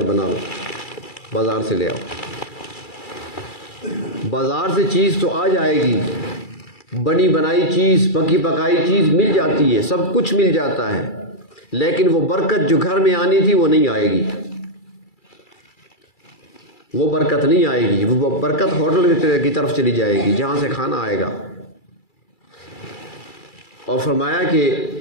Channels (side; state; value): right; late; 2.3 ms